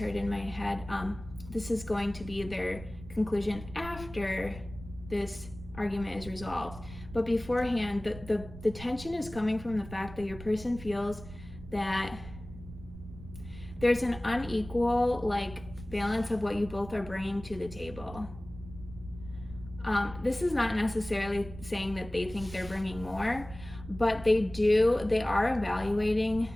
in my head, this is going to be their conclusion after this argument is resolved. But beforehand, the tension is coming from the fact that your person feels that there's an unequal like balance of what you both are bringing to the table. This is not necessarily saying that they think they're bringing more, but they are evaluating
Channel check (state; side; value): noise; right; rumble, 14 dB below the sound